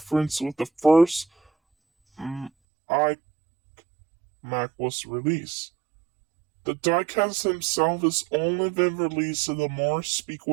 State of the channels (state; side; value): drops out; left; at 2.5 s